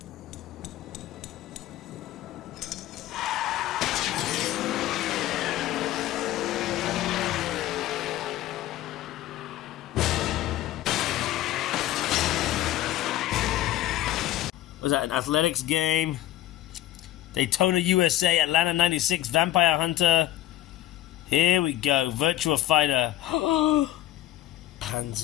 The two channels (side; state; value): right; quieter; 14.3 dB